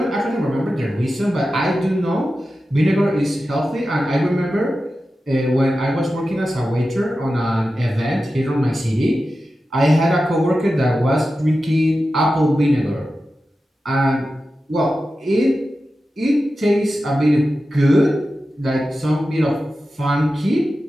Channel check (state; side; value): normal; both; correlation 0.92